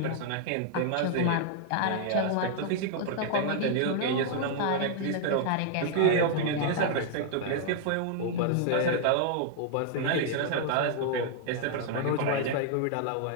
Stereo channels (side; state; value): both; different; correlation 0.00